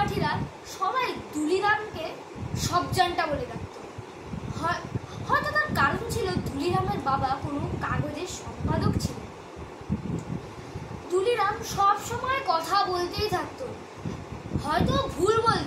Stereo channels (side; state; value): both; identical; correlation 1.00